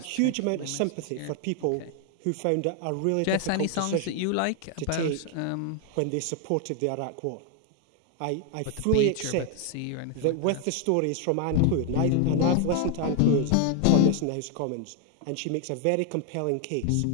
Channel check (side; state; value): both; different; correlation 0.00